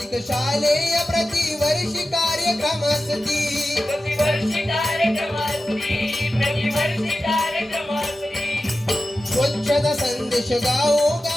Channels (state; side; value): normal; both; correlation 0.93